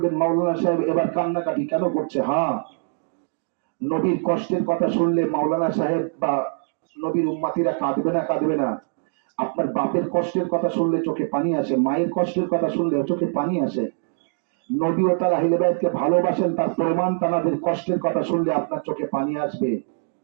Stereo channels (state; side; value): silent; left; digital silence